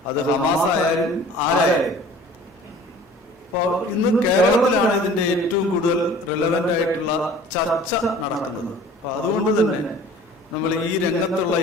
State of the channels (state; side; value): normal; both; correlation 0.47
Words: അത് ഹമാസ് ആയാലും ആരായാലും. അപ്പോൾ ഇന്ന് കേരളത്തിലാണ് ഇതിന്റെ ഏറ്റവും കൂടുതൽ റിലവന്റ് ആയിട്ടുള്ള ചർച്ച നടക്കുന്നത്. അപ്പൊ അതുകൊണ്ട് തന്നെ നമ്മൾ ഈ രംഗത്തുള്ള